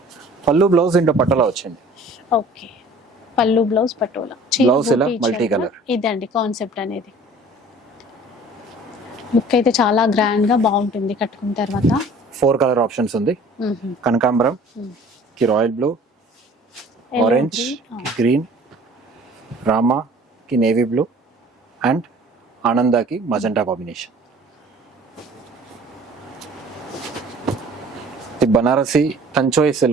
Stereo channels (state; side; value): normal; both; correlation 0.49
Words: పళ్ళు బ్లౌజ్ ఇంటో పటోలా వచ్చింది. ఓకే, పళ్ళు బ్లౌజ్ పటోలా, బ్లౌజ్ ఇలా మల్టీ కలర్. ఇదండి కాన్సెప్ట్ అనేది. లుక్ అయితే చాలా గ్రాండ్ గా బాగుంటుంది కట్టుకున్న తర్వాత. 4 కలర్ ఆప్షన్స్ ఉంది. కనకాంబరం కి రాయల్ బ్లూ, ఆరెంజ్ కి గ్రీన్, రామా కి నేవీ బ్లూ అండ్ ఆనందాకి మజెంటా కాంబినేషన్. ఇది బనారసి తంచోయి